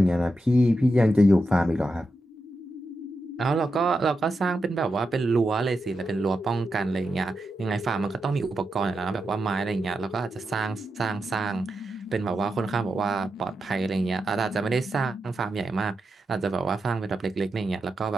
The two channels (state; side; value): normal; both; correlation 0.87